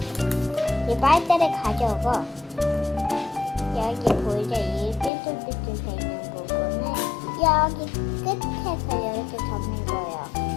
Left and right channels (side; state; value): right; drops out; at 5.1 s